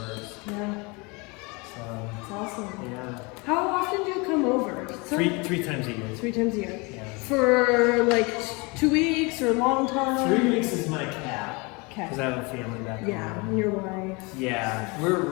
Yeah. So, It's awesome. yeah. How often do you come over? Three times a year. 3 times a year. Yeah. For like 2 weeks or a long time? 3 weeks is my cap. Okay. Because I have a family back home. Yeah, and your wife. Yeah, we're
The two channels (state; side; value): quieter; right; 28.1 dB